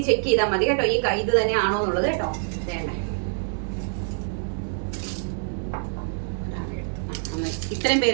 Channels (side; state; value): left; silent; digital silence